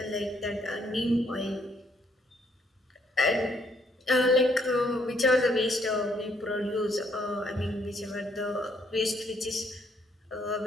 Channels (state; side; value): normal; both; correlation 0.69